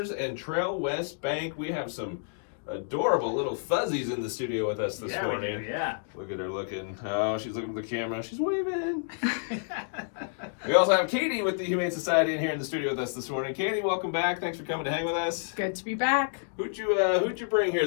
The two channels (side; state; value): right; silent; digital silence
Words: and Trail West Bank. We have some adorable little fuzzies in the studio with us this morning. Yeah. Look at her looking. Oh, she's looking at the camera. She's waving. We also have Katie with the Humane Society in here in the studio with us this morning. Katie, welcome back. Thanks for coming to hang with us. Good to be back. Who'd you bring here